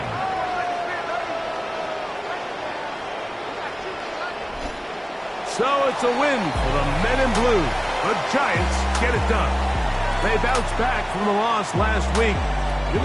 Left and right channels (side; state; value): both; identical; correlation 1.00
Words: So it's a win for the men in blue. The Giants get it done. They bounced back from the loss last week. Going